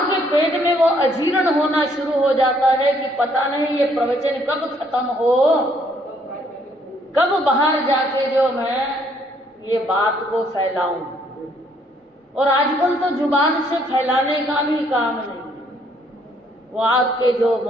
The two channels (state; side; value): normal; both; correlation 0.67